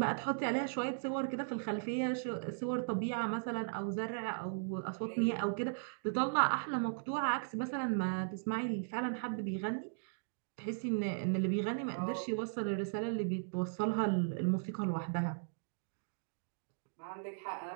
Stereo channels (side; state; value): left; silent; digital silence